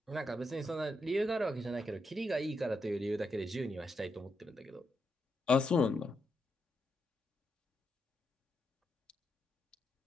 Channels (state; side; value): normal; both; correlation 0.82